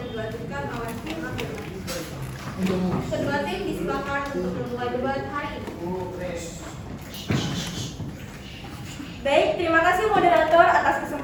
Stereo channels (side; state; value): both; identical; correlation 1.00